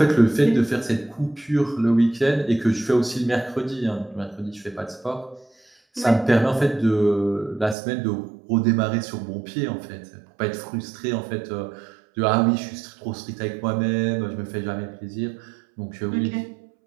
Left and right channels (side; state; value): left; drops out; at 7.8 s